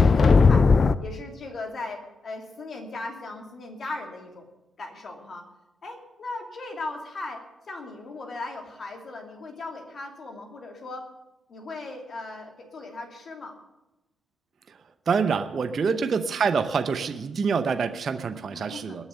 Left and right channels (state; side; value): normal; both; correlation 0.84